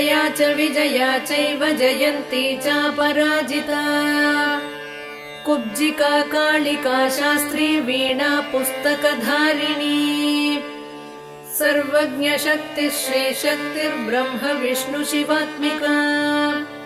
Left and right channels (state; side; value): identical; both; correlation 1.00